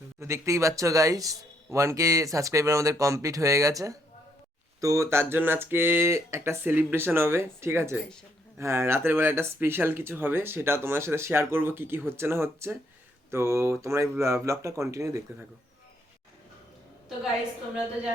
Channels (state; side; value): normal; both; correlation 0.72